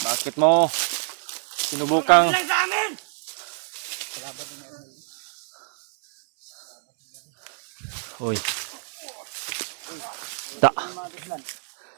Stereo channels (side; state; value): left; silent; 61 dB below the other